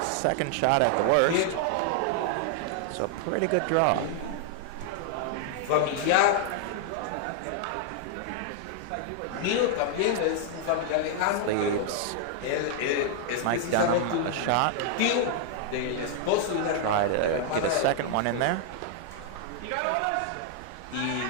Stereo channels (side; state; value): both; different; correlation 0.00